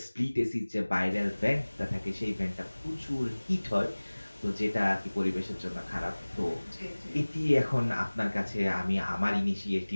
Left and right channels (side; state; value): both; inverted; correlation -1.00